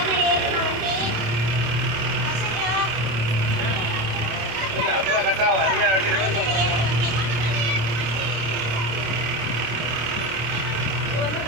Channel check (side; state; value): left; late; 26 ms